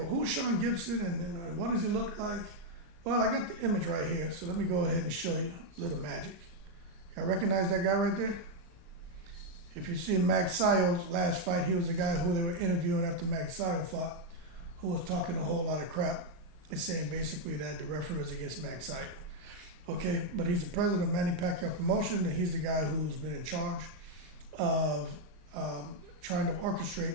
who's Sean Gibson and what does he look like? Well, I got the image right here, so let me go ahead and show you a little magic. Y'all recognize that guy right there? If you see Pacquiao's last fight, he was the guy who they were interviewing after Pacquiao fought, who was talking a whole lot of crap and saying basically that the referee was against Pacquiao. Okay, but he's the president of Manny Pacquiao Promotion, and he's the guy who's been in charge of trying to orchestrate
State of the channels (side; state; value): left; late; 36 ms